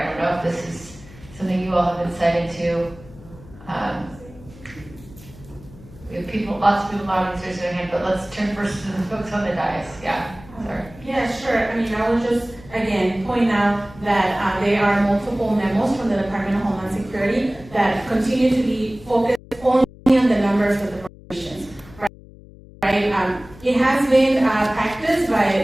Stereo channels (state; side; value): noise; left; hum, 20 dB below the sound